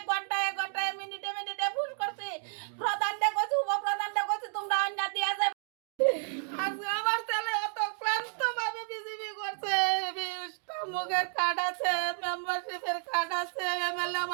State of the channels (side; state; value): left; silent; 57 dB below the other